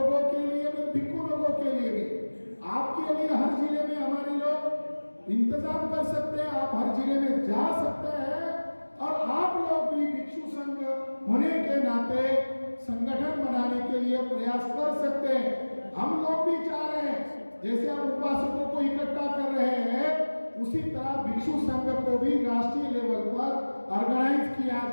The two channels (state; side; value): inverted; both; correlation -1.00